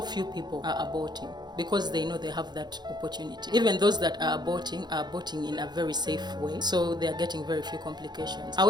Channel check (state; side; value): late; left; 0.21 ms